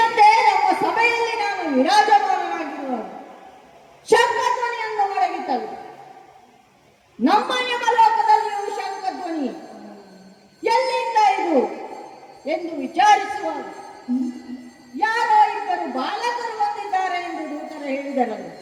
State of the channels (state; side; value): identical; both; correlation 1.00